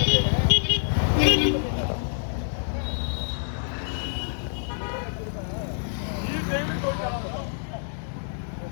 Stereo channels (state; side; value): silent; right; digital silence